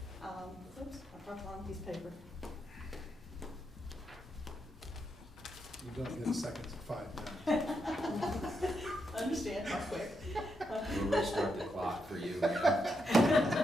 Oops, I dropped the wrong piece of paper. You don't get seconds of 5 minutes. Understand how quick. We'll restart the clock for you, man.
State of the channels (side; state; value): both; normal; correlation 0.82